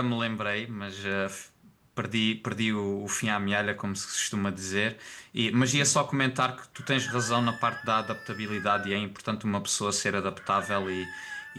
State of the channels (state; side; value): identical; both; correlation 1.00